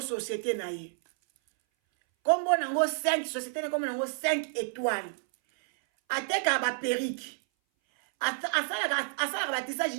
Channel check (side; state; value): left; silent; 58 dB below the other